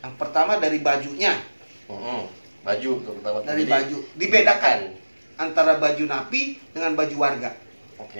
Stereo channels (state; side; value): inverted; both; correlation -1.00